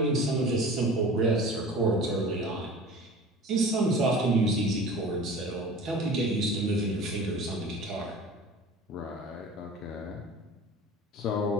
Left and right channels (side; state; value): both; normal; correlation 0.40